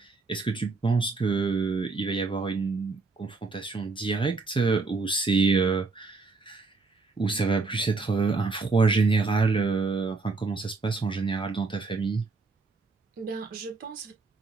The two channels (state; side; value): quieter; left; 4.0 dB